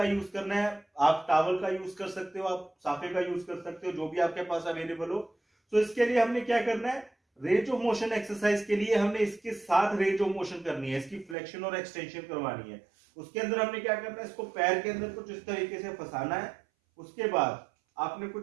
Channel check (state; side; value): drops out; left; at 11.4 s